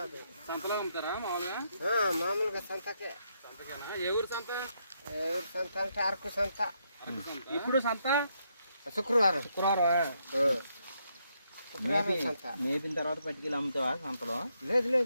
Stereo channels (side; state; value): both; inverted; correlation -0.77